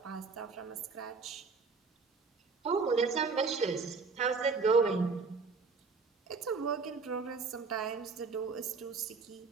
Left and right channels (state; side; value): quieter; left; 4.6 dB